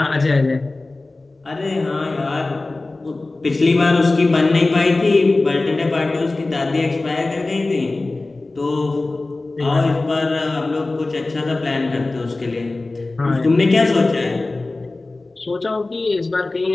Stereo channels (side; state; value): right; quieter; 3.2 dB